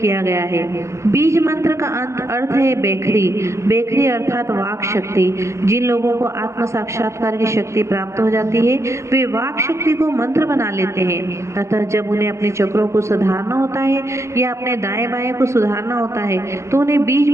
गया है। बीज मंत्र का अर्थ है बेखरी। बेखरी अर्थात वाक शक्ति। जिन लोगों को आत्म साक्षात्कार की शक्ति प्राप्त हो जाती है वे वाक शक्ति को मंत्र बना लेते हैं। अतः जब उन्हें अपने चक्रों को सुधारना होता है या अपने दाएं बाएं को सुधारना होता है तो उन्हें बीज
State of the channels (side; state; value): left; late; 0.14 ms